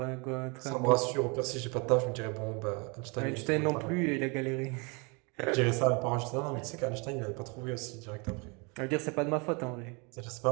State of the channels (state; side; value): quieter; left; 31.2 dB